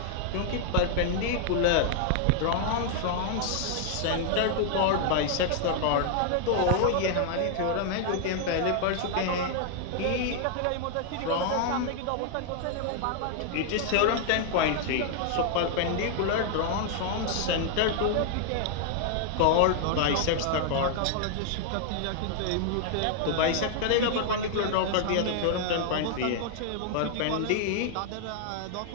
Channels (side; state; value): both; different; correlation 0.00